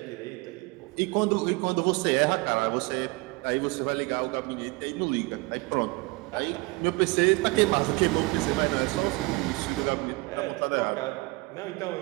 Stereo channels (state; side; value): quieter; left; 25.0 dB